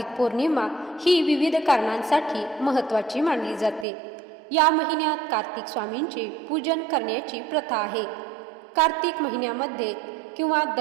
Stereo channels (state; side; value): drops out; left; at 3.9 s